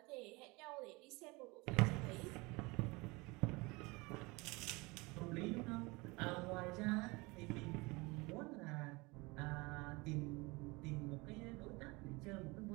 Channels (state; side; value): quieter; left; 24.9 dB